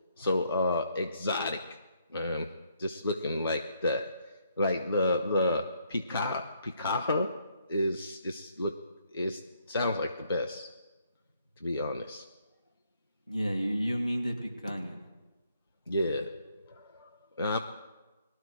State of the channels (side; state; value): both; inverted; correlation -0.71